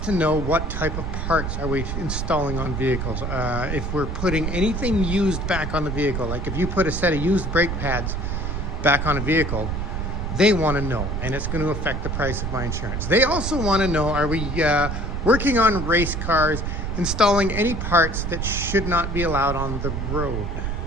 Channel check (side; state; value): right; noise; rumble, 2 dB below the sound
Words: know what type of parts are we installing on vehicles. If we're putting anything used back on the vehicle, like if you put a set of used brake pads back on a vehicle, they want to know, and it's going to affect the price of my insurance. They also want to know, are we working on race cars, installing any parts that should not be allowed on the road,